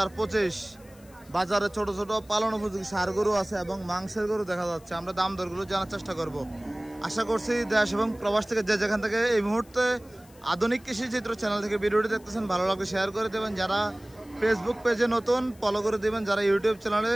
বাজারে ছোট ছোট পালন উপযোগী ষাঁড় গরু আছে এবং মাংসের গরু দেখা যাচ্ছে আমরা দাম দরগুলো জানার চেষ্টা করব আশা করছি দেশ এবং প্রবাস থেকে যে যেখান থেকে এই মুহূর্তে আধুনিক কৃষি চিত্র চ্যানেল থেকে ভিডিওটি দেখতেছেন ভালো লাগলে শেয়ার করে দেবেন যারা ফেসবুক পেজে নতুন ফলো করে দেবেন যারা ইউটিউব চ্যানেলে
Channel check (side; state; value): left; noise; hiss, 27 dB below the sound